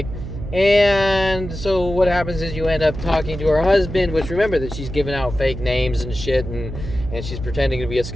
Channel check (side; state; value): right; noise; hum, 8 dB below the sound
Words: And so what happens is you end up talking to her husband, which remember that she's giving out fake names and shit, and she's pretending to be a